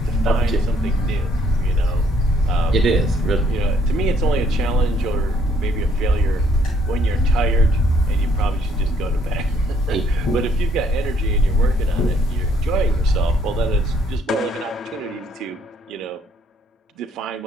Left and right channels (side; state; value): both; normal; correlation 0.66